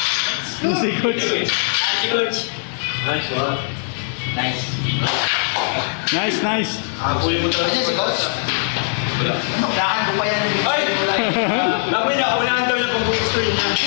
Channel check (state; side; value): silent; right; 62 dB below the other